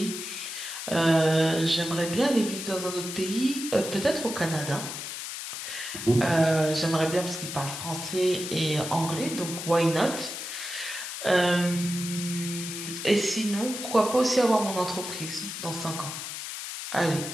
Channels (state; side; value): noise; left; hiss, 7 dB below the sound